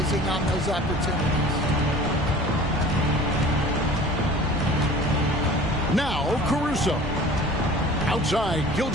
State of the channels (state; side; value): normal; both; correlation 0.44